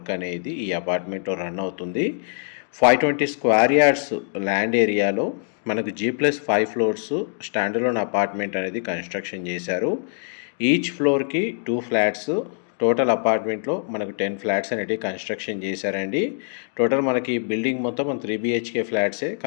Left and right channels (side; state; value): right; silent; 63 dB below the other